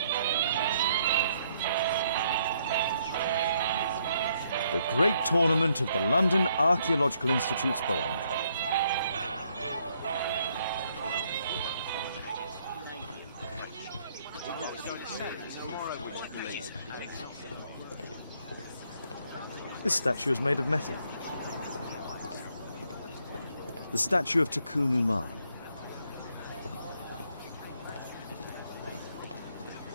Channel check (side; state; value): both; inverted; correlation -0.71